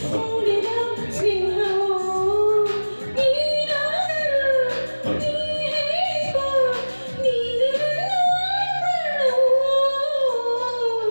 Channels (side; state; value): both; inverted; correlation -1.00